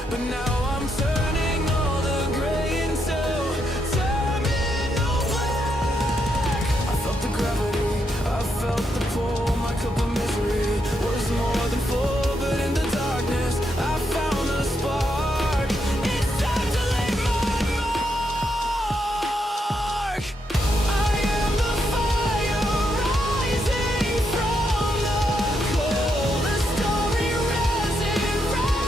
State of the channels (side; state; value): both; normal; correlation 0.80